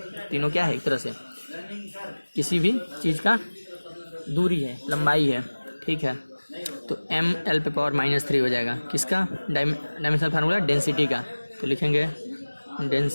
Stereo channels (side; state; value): both; inverted; correlation -1.00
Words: तीनों क्या है एक तरह से, किसी भी चीज़ का दूरी है, लंबाई है, ठीक है। तो mL⁻³ हो जाएगा, किसका डायमेंशनल फार्मूला, डेंसिटी का। तो लिखेंगे